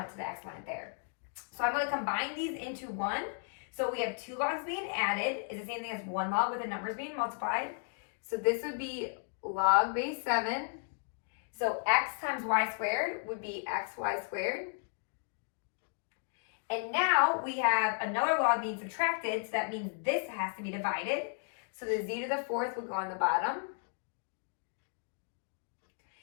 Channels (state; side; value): silent; right; 55 dB below the other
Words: to the exponent there. So I'm going to combine these into one. So we have two logs being added is the same thing as one log with the numbers being multiplied. So this would be log base 7. So x times y squared would be xy squared. And now we have another log being subtracted, so that means this has to be divided. So the z to the 4th would go on the bottom.